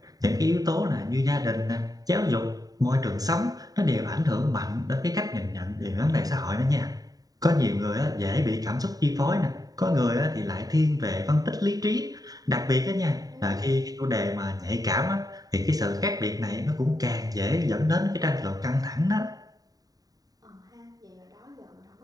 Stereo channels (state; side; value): late; left; 0.18 ms